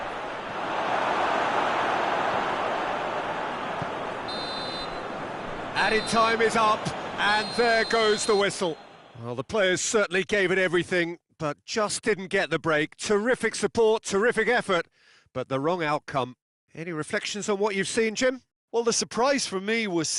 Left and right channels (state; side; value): identical; both; correlation 1.00